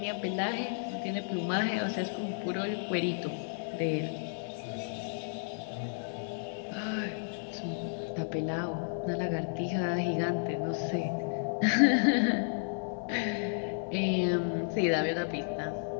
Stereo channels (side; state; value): right; silent; digital silence